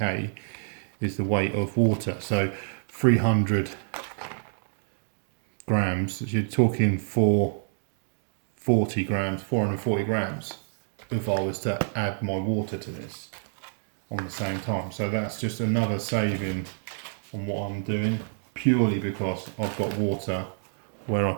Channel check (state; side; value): silent; left; digital silence